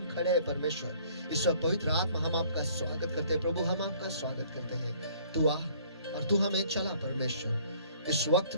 खड़े हैं परमेश्वर, इस वक्त पवित्र आत्मा हम आपका स्वागत करते हैं प्रभु, हम आपका स्वागत करते हैं। तू आ और तू हमें चला परमेश्वर, इस वक्त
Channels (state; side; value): inverted; both; correlation -0.57